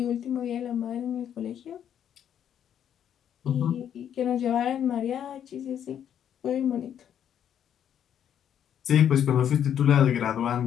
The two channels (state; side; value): quieter; right; 9.4 dB